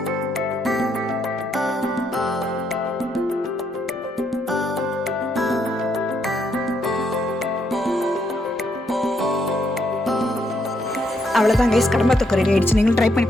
அவ்வளோதான் கைஸ், கடம்பா தொக்கு ரெடி ஆயிடுச்சு. நீங்களும் ட்ரை பண்ணி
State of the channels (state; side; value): normal; both; correlation 0.75